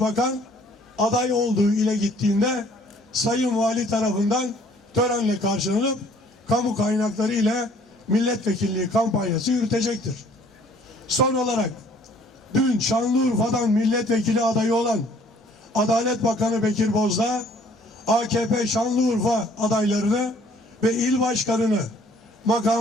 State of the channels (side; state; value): both; normal; correlation 0.57